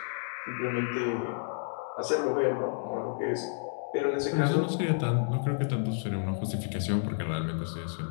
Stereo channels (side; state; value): right; silent; digital silence